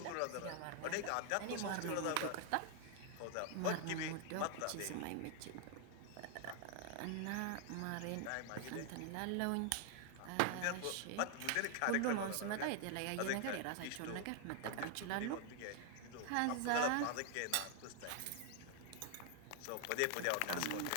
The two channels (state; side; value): different; both; correlation 0.00